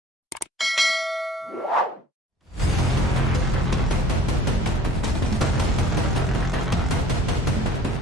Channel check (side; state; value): both; normal; correlation 0.49